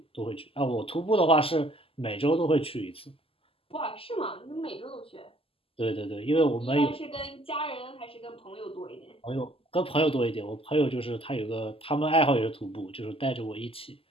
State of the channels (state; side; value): late; right; 0.27 ms